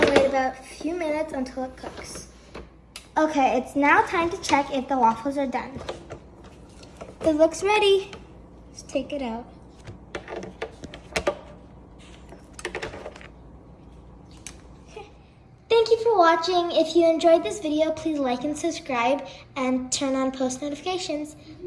wait about a few minutes until it cooks. Okay, it's now time to check if the waffles are done. It looks ready. Let's take it out. Thank you for watching. If you enjoyed this video, please like and subscribe and turn on post notifications.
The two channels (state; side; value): identical; both; correlation 1.00